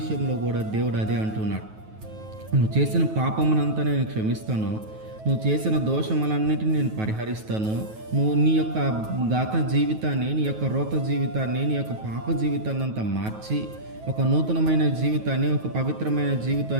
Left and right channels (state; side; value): late; left; 9.3 ms